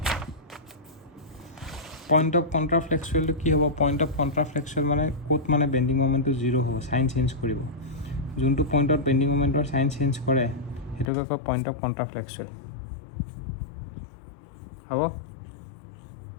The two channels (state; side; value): drops out; right; at 11.1 s